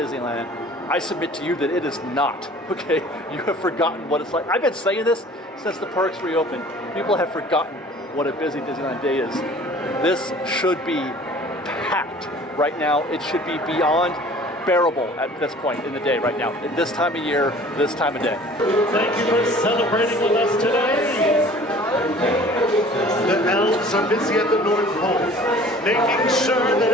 I submit to you that it is not, okay? You have forgotten what it's like. I've been saying this since the parks reopened. People have forgotten what a busy Disneyland day is. This should be packed right now. It should be beyond bearable at this point in the day right now, at this time of year, this time of day. Thank you for celebrating with us today. The elves are busy at the North Pole, making sure that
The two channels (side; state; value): both; normal; correlation 0.48